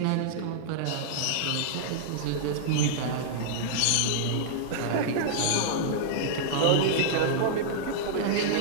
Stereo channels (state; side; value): different; both; correlation -0.02